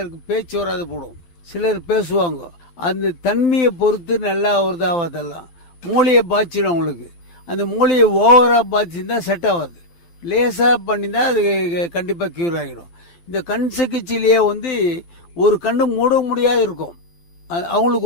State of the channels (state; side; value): late; right; 12 ms